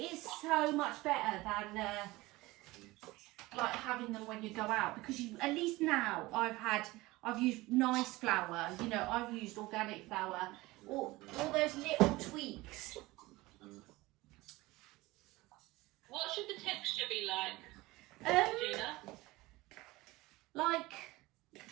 is so much better than like having them when you go out, because at least now I've used nice flour, I've used organic flour, all those little tweaks. What should the texture be like, Gina? Like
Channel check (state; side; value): quieter; left; 20.3 dB